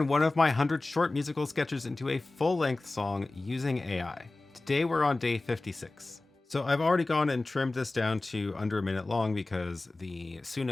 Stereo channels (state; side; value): quieter; right; 3.1 dB